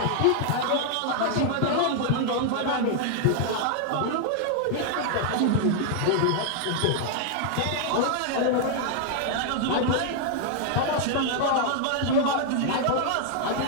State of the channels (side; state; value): both; different; correlation 0.00